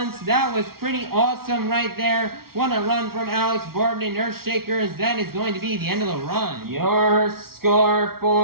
That was pretty awesome right there. What a run from Alex Borden in Earthshaker, as that is going to be the end of the run. Your score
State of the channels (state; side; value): late; left; 0.94 ms